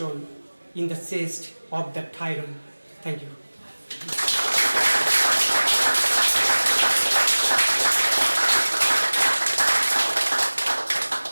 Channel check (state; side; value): inverted; both; correlation -1.00